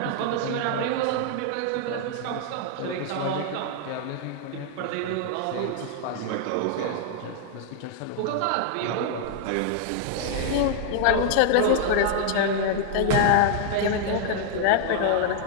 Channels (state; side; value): different; both; correlation -0.01